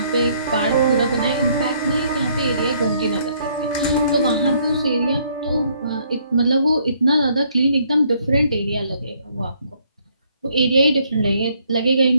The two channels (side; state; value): both; inverted; correlation -0.67